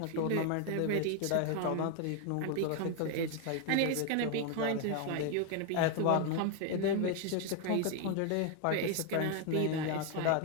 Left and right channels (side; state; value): both; different; correlation 0.01